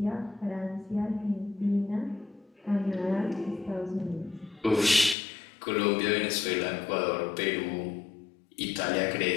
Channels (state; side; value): drops out; right; at 5.2 s